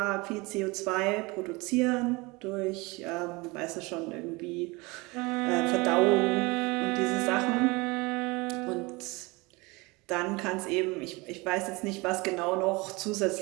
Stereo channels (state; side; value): quieter; left; 24.8 dB